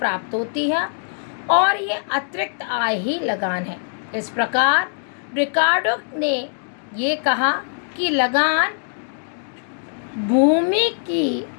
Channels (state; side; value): silent; right; digital silence